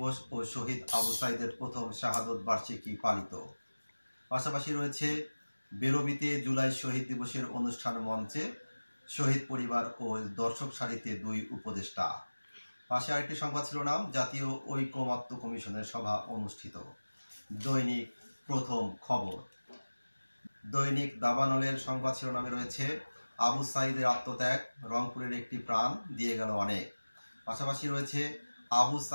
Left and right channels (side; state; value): both; inverted; correlation -1.00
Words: ও শহীদ আবু সাইদের প্রথম শাহাদত বার্ষিকী পালিত। পাশাপাশি রয়েছে বেরবিতে জুলাই শহীদ দিবসের অনুষ্ঠান মঞ্চে শহীদ পরিবার ও দর্শক সারিতে দুই উপদেষ্টা। পাশে আরেকটি সংবাদ শিরোনাম জাতীয় ঐকমত্য কমিশনের সভা অনুষ্ঠিত। দৈনিক প্রথম খবর। দৈনিক দাবানলের সংবাদ শিরোনামে রয়েছে আবু সাইদের আত্মত্যাগ, রংপুরের একটি প্রাণ দিয়ে গেল অনেক। পাশাপাশি রয়েছে আবু